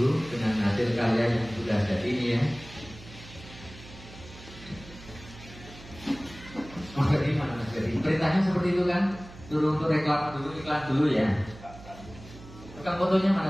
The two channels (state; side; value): noise; right; hum, 18 dB below the sound